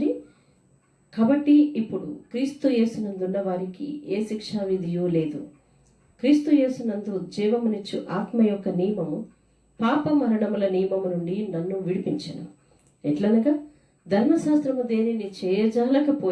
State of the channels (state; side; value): identical; both; correlation 1.00